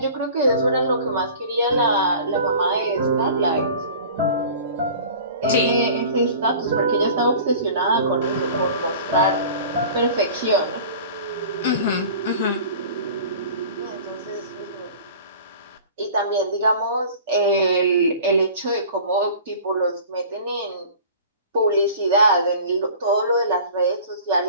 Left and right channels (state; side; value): inverted; both; correlation -0.42